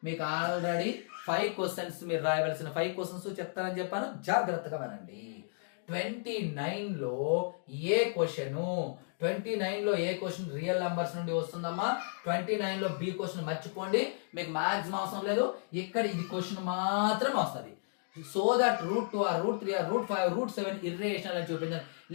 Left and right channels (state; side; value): silent; right; digital silence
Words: మీకు ఆల్రెడీ 5 క్వశ్చన్స్ మీరు రాయవలసిన 5 క్వశ్చన్స్ చెప్తానని చెప్పాను, జాగ్రత్తగా వినండి. 29లో ఏ క్వశ్చన్, 29లో ఏ క్వశ్చన్ రియల్ నంబర్స్ నుండి వస్తుందమ్మా. 29లో బి క్వశ్చన్ మర్చిపోండి, మీకు మాక్సిమం అవసరం లేదు. ఇక్కడ ఇది క్వశ్చన్ మాత్రమే వస్తుంది. So that √2 or √3 or √5 √7 irrational అని చూపించారు,